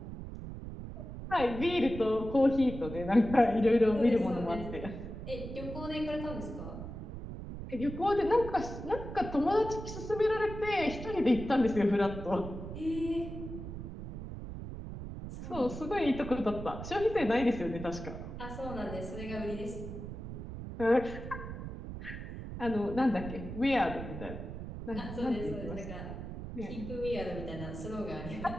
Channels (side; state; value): right; noise; rumble, 9 dB below the sound